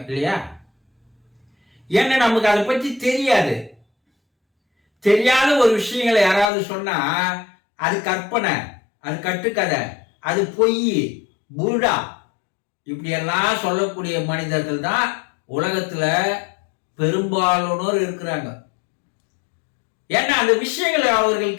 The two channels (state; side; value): drops out; right; at 6.5 s